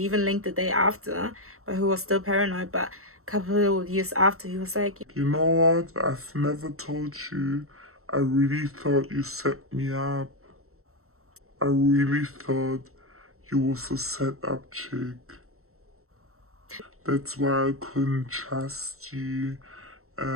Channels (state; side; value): late; left; 0.63 ms